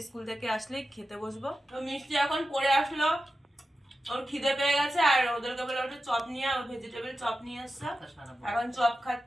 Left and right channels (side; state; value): both; normal; correlation 0.92